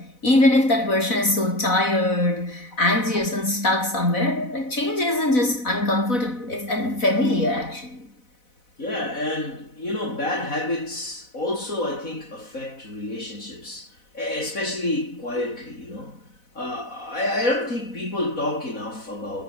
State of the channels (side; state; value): right; late; 4.0 ms